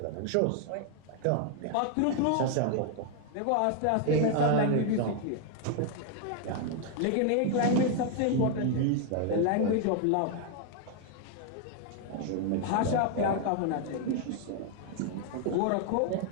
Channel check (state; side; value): different; both; correlation 0.00